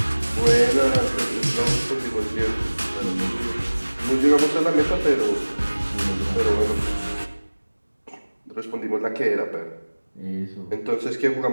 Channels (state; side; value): inverted; both; correlation -1.00